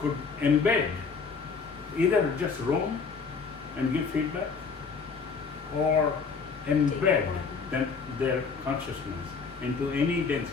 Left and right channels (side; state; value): right; quieter; 5.2 dB